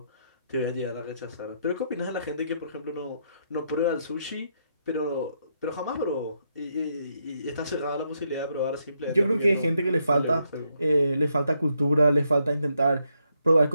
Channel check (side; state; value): both; inverted; correlation -0.78